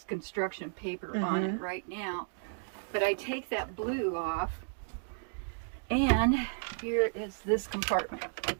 construction paper on it right now. But I take that blue off, and here is this compartment.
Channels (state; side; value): silent; left; digital silence